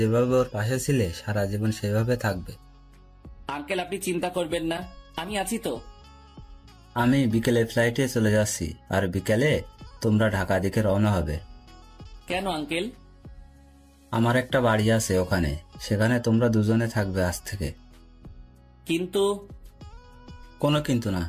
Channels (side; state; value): both; identical; correlation 1.00